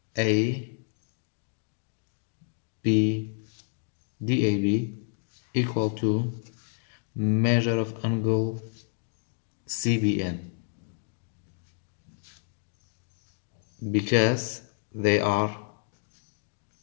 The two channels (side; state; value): right; silent; digital silence